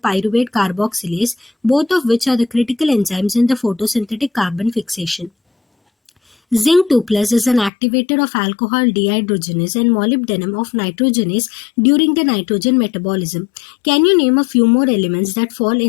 carboxylase, both of which are the critical enzymes in the photosynthetic carbon fixation. Zinc 2 plus is an activator of alcohol dehydrogenase and molybdenum of nitrogenase during the nitrogen metabolism. Can you name a few more elements that fall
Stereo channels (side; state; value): right; drops out; at 7.7 s